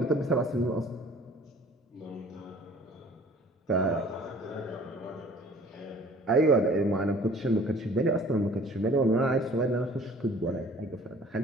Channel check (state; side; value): normal; both; correlation 0.51